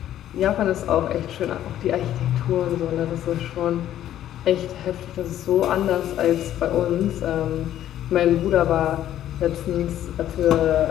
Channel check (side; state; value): right; quieter; 11.9 dB